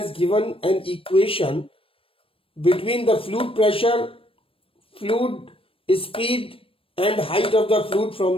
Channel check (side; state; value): right; late; 0.26 ms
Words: given an equation between the fluid pressure, fluid speed and height of the fluid from